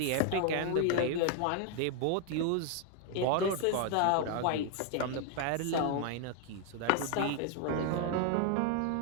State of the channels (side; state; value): both; different; correlation 0.00